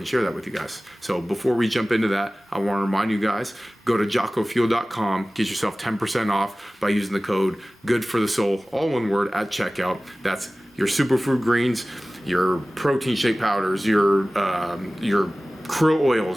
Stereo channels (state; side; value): normal; both; correlation 0.97